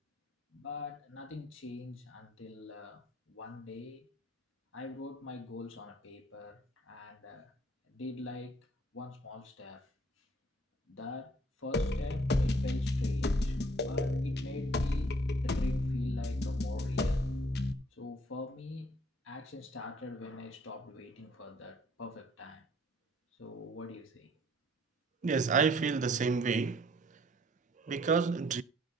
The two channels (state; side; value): normal; both; correlation 0.60